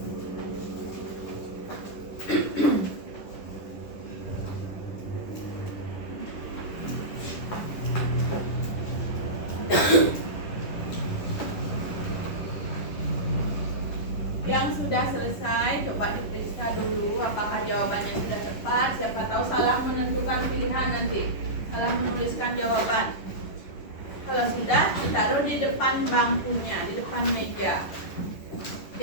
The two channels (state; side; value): late; right; 10 ms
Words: Yang sudah selesai, coba diperiksa dulu apakah jawabannya sudah tepat. Siapa tahu salah menentukan pilihan nanti, salah menuliskan jawaban. Kalau sudah, ditaruh di depan bangkunya, di depan meja.